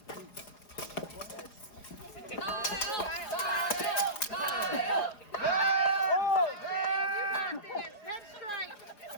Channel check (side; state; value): right; late; 4.9 ms